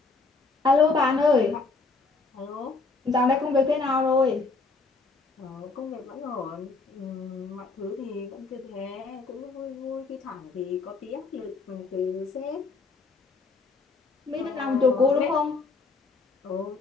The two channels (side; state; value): right; quieter; 4.0 dB